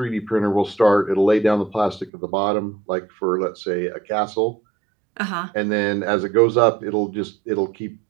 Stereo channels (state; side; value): drops out; left; at 2.1 s